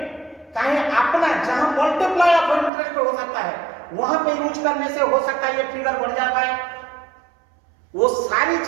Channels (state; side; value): drops out; left; at 2.7 s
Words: कहीं अपना जहां मल्टीप्लाई ऑफ इंटरेस्ट हो सकता है वहां पे यूज करने से हो सकता है ये फिगर बढ़ जाता है। वो सारी